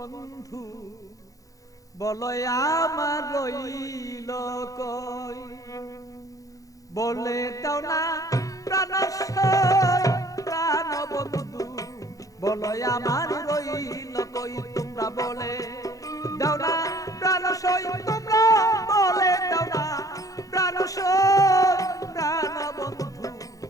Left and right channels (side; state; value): right; late; 0.17 ms